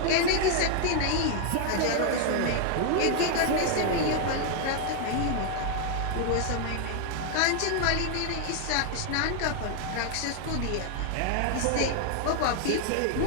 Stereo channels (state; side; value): different; both; correlation 0.00